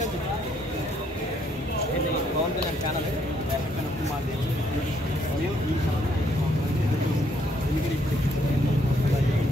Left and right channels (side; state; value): both; normal; correlation 0.69